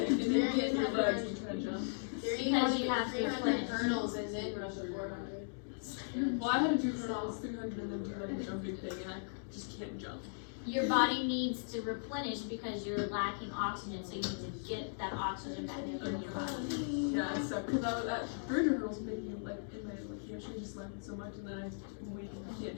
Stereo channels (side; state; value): right; silent; digital silence